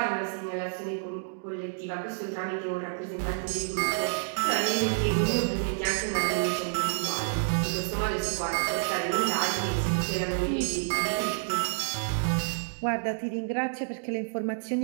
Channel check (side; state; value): left; silent; digital silence